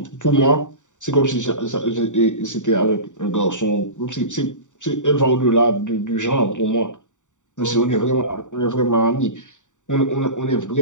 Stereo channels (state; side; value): late; right; 0.86 ms